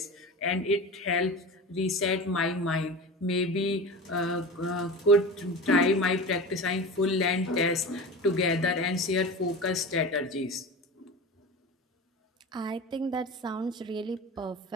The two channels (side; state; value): both; normal; correlation 0.30